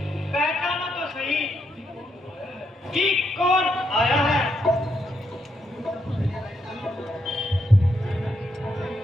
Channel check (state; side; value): normal; both; correlation 0.79